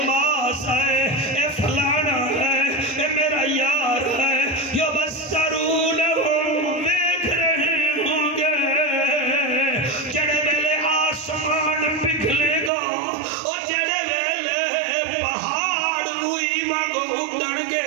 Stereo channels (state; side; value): drops out; left; at 12.7 s